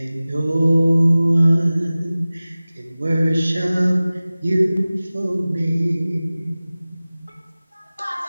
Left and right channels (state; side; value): inverted; both; correlation -0.97